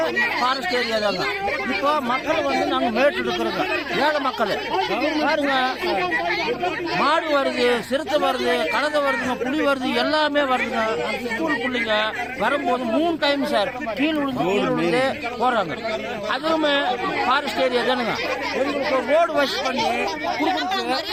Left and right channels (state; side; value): identical; both; correlation 1.00